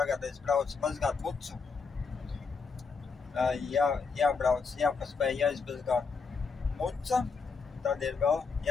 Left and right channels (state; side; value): quieter; right; 5.0 dB